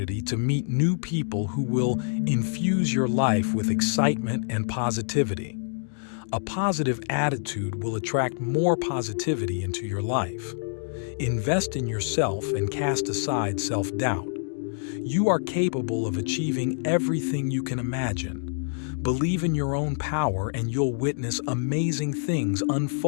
to meet new people who will infuse your life with excitement and positivity. A positive attitude will attract more positivity into your life. Invest in yourself and cast aside self-doubt. You are capable of achieving everything you can imagine. Believe in your own power and you'll witness amazing things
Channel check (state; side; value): silent; right; digital silence